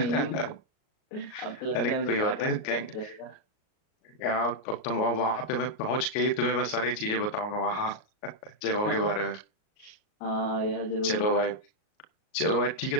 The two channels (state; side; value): late; right; 38 ms